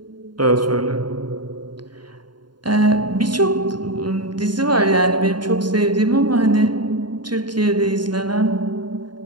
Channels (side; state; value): left; late; 0.71 ms